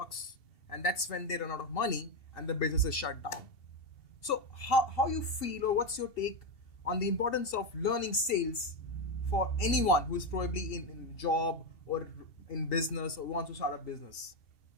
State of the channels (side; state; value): right; late; 2.7 ms